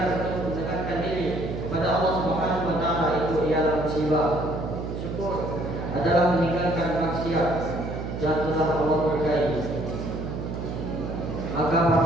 untuk mendekatkan diri kepada Allah Subhanahu wa taala, itu ialah musibah. Syukur adalah meninggalkan maksiat yang telah Allah berkahi. Maka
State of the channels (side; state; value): right; noise; hum, 5 dB below the sound